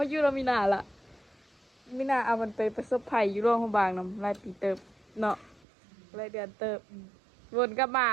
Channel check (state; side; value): drops out; left; at 5.7 s